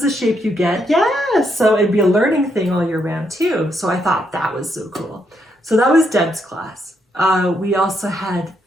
the shape you get. Yes. So it'd be a learning thing all year round too. So I thought that was so cool. So that was Deb's class. We also had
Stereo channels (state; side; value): normal; both; correlation 0.77